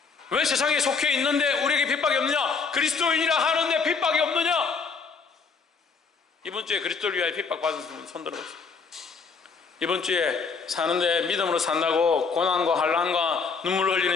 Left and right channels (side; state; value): right; quieter; 5.1 dB